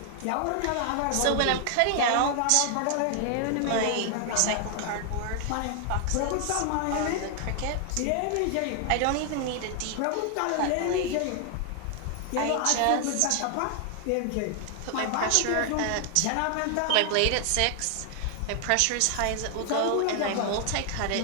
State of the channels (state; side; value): different; both; correlation 0.00